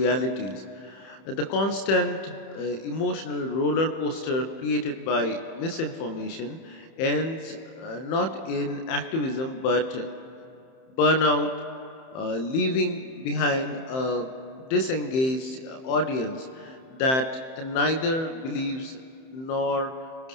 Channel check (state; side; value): late; right; 31 ms